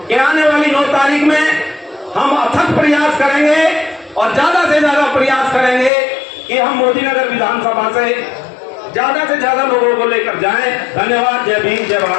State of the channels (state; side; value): drops out; right; at 5.9 s